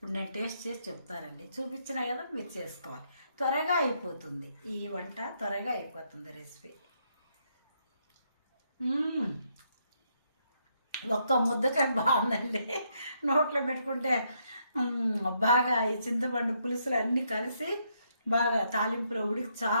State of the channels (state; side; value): inverted; both; correlation -0.76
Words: నేను టేస్ట్ చేసి చెప్తానండి. చూపించినా కదా మీరు చేసుకోవాలి. త్వరగా అయిపోతుంది ఈ వంట, త్వరగా అయిపోతుంది రెసిపీ. ఒక్క ముద్దకాయ బాగుందండి. నోట్లో పెట్టుకుంటే బాగా ఈ చింతపండు పులుసులు అన్నీ కలిసి బాగా తాలింపులో ఉడికి